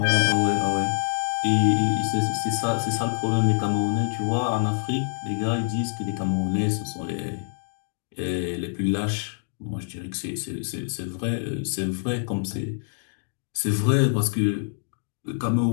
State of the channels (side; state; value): right; silent; digital silence